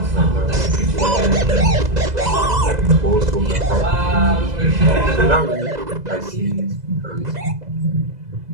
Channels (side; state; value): left; late; 2.0 ms